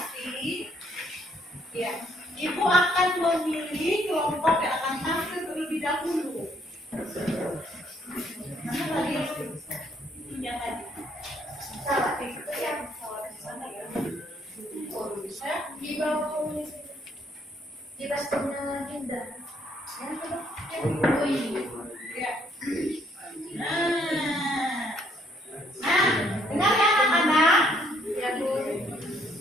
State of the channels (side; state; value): both; normal; correlation 0.68